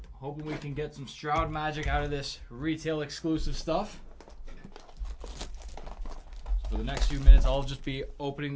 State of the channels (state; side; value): identical; both; correlation 1.00